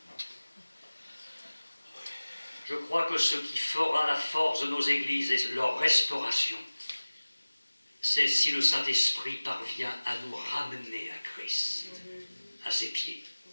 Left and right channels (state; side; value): inverted; both; correlation -1.00